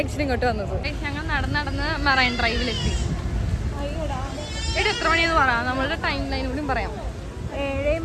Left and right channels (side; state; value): both; identical; correlation 1.00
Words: ഇങ്ങോട്ട് വന്നത്. ഞങ്ങൾ നടന്ന് മറൈൻ ഡ്രൈവിലെത്തി. എത്ര മണിയെന്ന് പറയാം, നമ്മളുടെ ടൈം ലൈൻ കൂടി പറയാം.